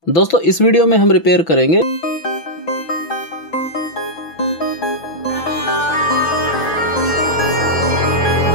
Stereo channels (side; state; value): right; late; 6.0 ms